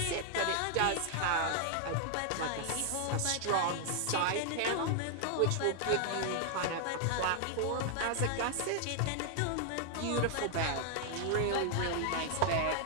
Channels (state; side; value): different; both; correlation 0.00